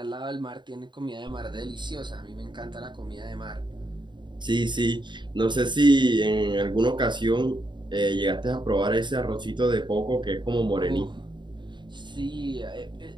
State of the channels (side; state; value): left; late; 0.22 ms